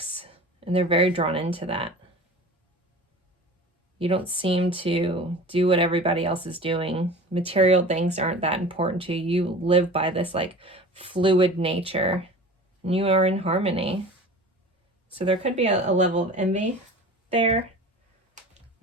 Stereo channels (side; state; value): both; normal; correlation 0.38